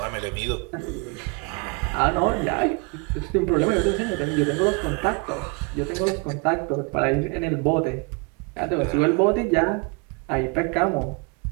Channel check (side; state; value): left; quieter; 30.7 dB